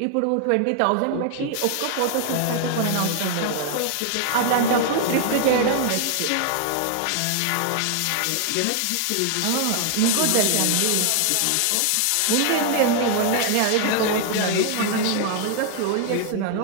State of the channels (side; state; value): both; different; correlation 0.00